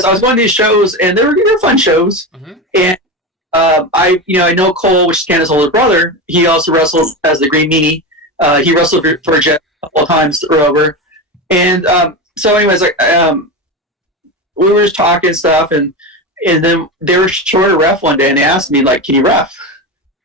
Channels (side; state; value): both; normal; correlation 0.20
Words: I was going to these shows, and they were fun shows. Mm-hmm. And I know Cole, which is Candace's older brother. He also wrestled as the Green Meanie. He wrestled for Jeff a couple of times over. And so anyways, we were just talking stuff, and then they were short a ref one day, and they asked me, like, can you ref?